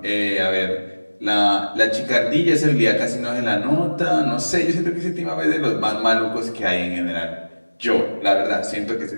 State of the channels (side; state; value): both; inverted; correlation -1.00